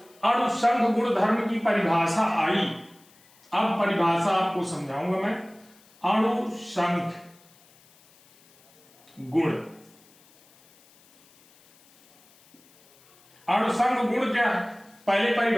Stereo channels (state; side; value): noise; left; hiss, 29 dB below the sound